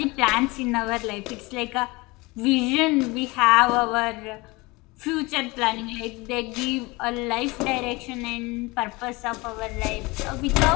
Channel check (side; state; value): right; quieter; 23.9 dB